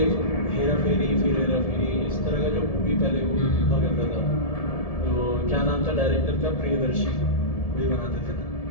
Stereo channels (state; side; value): late; right; 1.7 ms